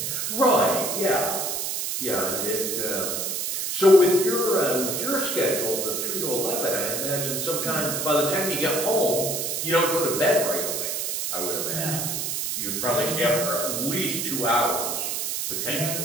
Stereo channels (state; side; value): noise; right; hiss, 2 dB below the sound